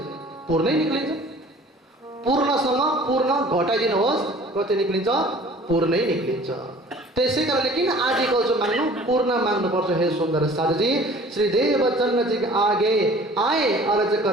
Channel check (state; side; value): normal; both; correlation 0.48